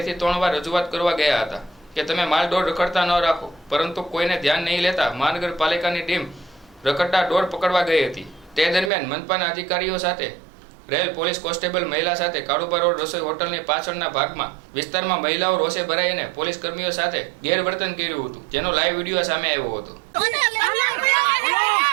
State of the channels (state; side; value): drops out; left; at 8.9 s